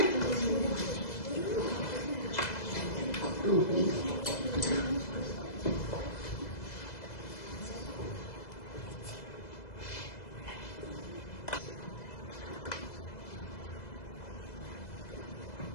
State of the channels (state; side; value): late; right; 2.0 ms